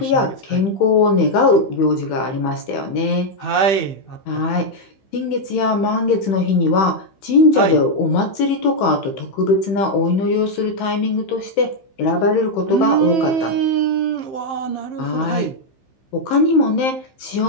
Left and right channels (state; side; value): late; right; 15 ms